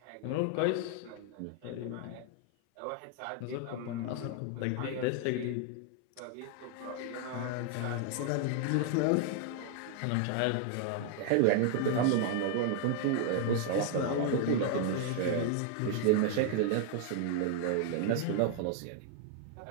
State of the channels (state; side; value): different; both; correlation 0.00